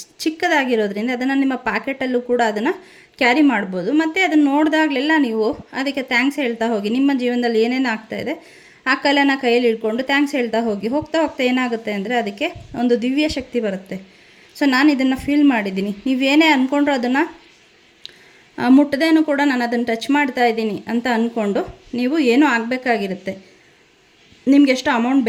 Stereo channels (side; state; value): both; identical; correlation 1.00